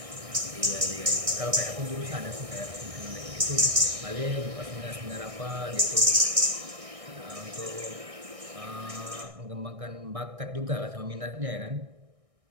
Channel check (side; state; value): left; late; 1.6 ms